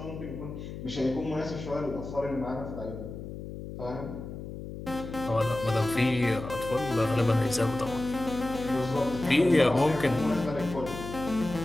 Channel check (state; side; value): noise; left; hum, 9 dB below the sound